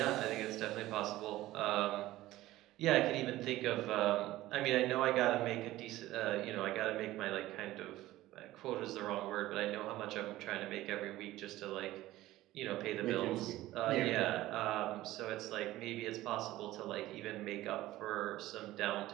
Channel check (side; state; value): left; quieter; 16.2 dB